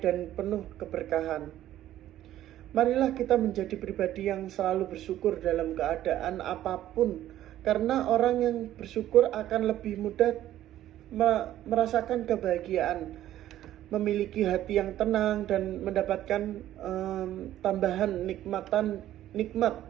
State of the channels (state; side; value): quieter; left; 13.0 dB